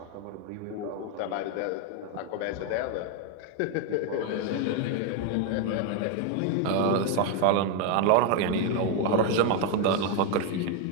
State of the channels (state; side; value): different; both; correlation 0.01